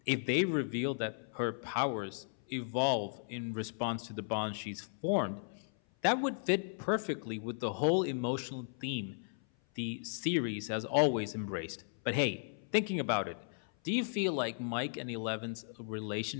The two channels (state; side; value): silent; right; 54 dB below the other